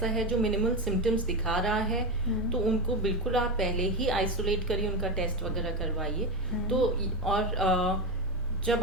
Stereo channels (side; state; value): both; normal; correlation 0.17